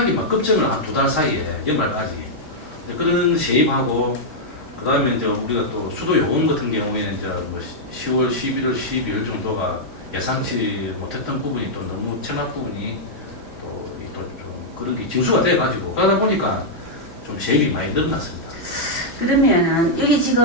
막 급증을 한 2달 사이에 연말까지 그런 세입하고 그다음에 이제 우리가 또 수도 요금 같은 경우에는 이제 뭐 10월, 11월, 12월 정도가 예상치 못했던 부분이 또 너무 체납 부분이 또 좀 그런 게 징수가 돼가지고 그러다 보니까 좀 세입이 많이 늘어났습니다. 그러면은 여기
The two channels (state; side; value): normal; both; correlation -0.06